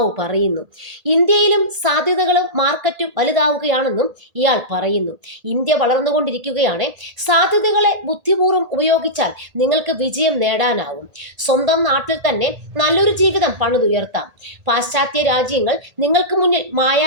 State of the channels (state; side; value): late; left; 1.8 ms